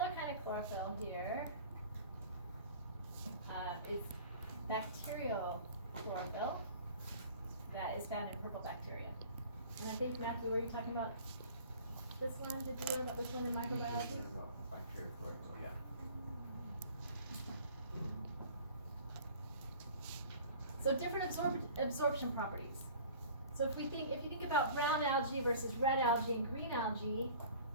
kind of chlorophyll here is bacterial chlorophyll that is found in purple bacteria. And I think, Matthew, were you talking about this one? Did you learn about this one in microbiology? Bacterial chlorophyll, yeah. So different absorption properties. So if you think about brown algae versus red algae and green algae,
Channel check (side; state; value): both; inverted; correlation -0.45